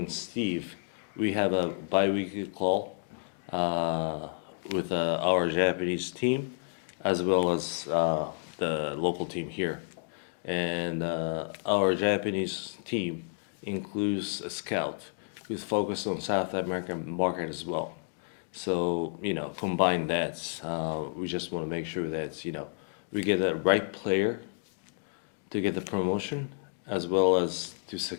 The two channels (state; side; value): silent; right; digital silence